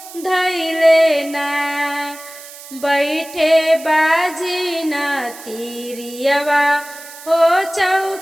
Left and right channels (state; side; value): noise; right; hiss, 16 dB below the sound